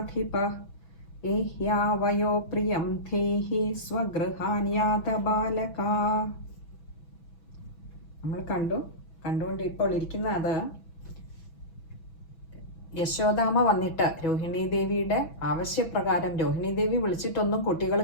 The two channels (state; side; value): late; right; 6.1 ms